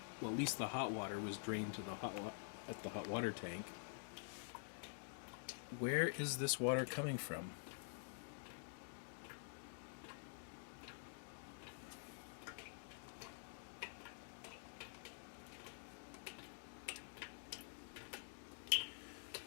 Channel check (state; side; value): silent; right; digital silence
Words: well, at least the hot water was drained to the at the hot water tank. Where is this water coming from?